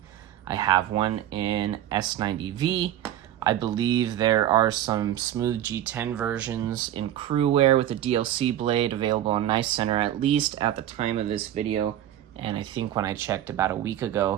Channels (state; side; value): quieter; left; 11.9 dB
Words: I have one in S90V. I believe there are some smooth G10 versions in crew wear with a DLC blade available on Knife Center, at least at the time of this video. And I think when I checked about a week